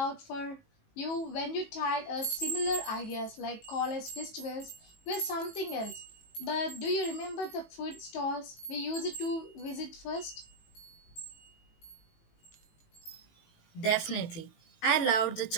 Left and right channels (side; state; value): right; late; 18 ms